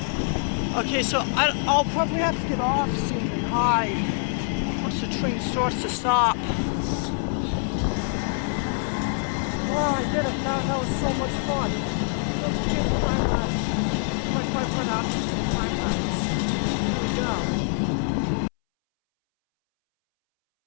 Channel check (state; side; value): silent; right; 62 dB below the other